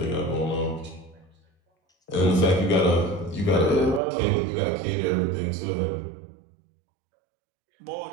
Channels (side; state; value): left; drops out; at 4.0 s